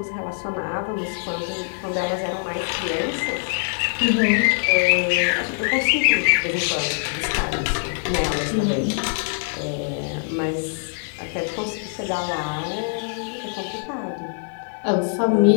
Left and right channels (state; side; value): silent; right; 63 dB below the other